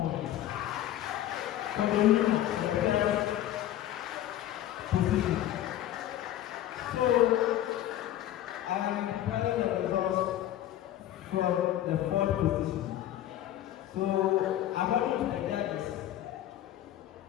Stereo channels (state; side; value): quieter; right; 12.6 dB